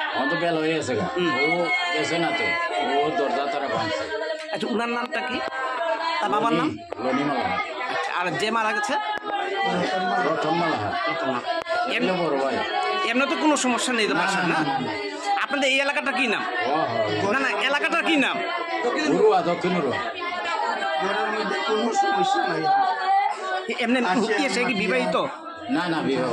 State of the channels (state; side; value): identical; both; correlation 1.00